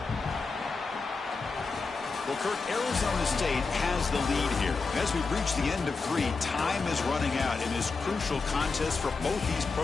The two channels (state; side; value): quieter; right; 4.4 dB